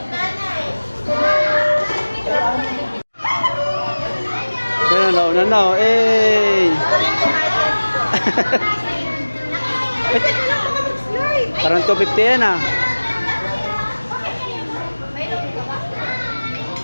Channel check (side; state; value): both; inverted; correlation -1.00